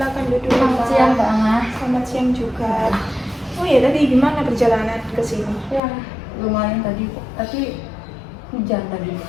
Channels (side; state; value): right; drops out; at 5.8 s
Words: duduk. Selamat siang Mbak Ana. Selamat siang juga. Oh ya, tadi gimana perjalanan ke sini? Ya, lumayan tadi, tapi hujan tadi.